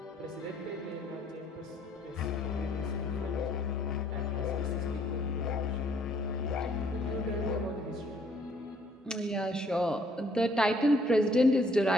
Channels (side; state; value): both; normal; correlation 0.64